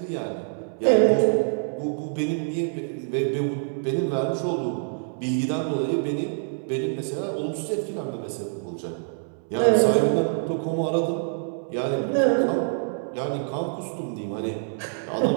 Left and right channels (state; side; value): silent; left; 61 dB below the other